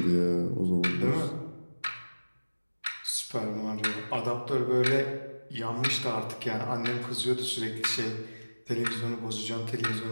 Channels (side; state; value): both; inverted; correlation -1.00